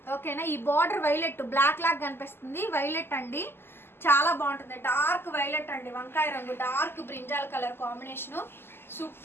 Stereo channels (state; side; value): late; right; 0.11 ms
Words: ఓకేనా. ఈ బార్డర్ వైలెట్ బ్లాక్ లాగా కనిపిస్తుంది, వైలెట్ అండి. చాలా బాగుంటుంది, డార్క్ వైలెట్ అండి, వంకాయ రంగు dark brinjal colour combination